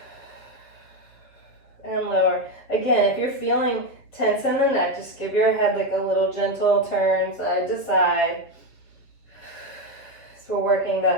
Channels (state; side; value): late; right; 8.0 ms